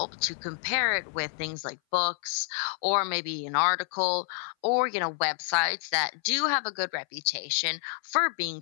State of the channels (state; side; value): silent; right; 57 dB below the other